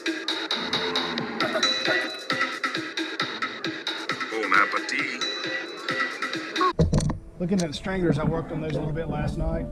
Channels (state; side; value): identical; both; correlation 1.00